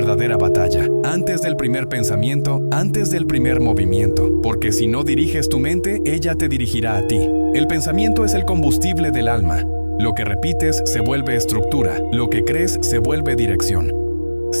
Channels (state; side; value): inverted; both; correlation -1.00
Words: batalla, antes del primer pensamiento, antes del primer movimiento. Porque si no diriges tu mente, ella te dirigirá a ti. El pensamiento es el combustible del alma. Lo que repites se vuelve estructura, lo que crees se vuelve dirección.